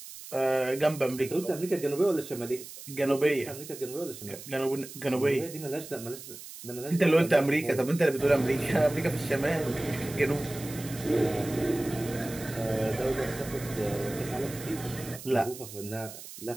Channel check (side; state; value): right; noise; hiss, 14 dB below the sound